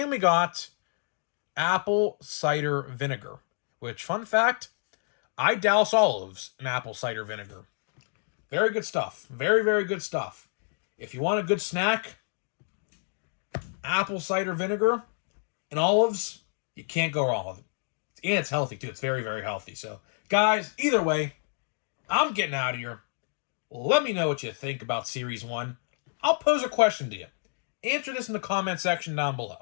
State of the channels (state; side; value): silent; right; 59 dB below the other